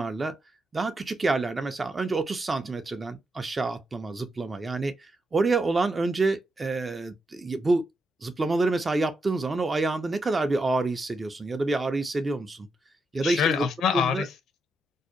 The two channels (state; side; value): normal; both; correlation 0.83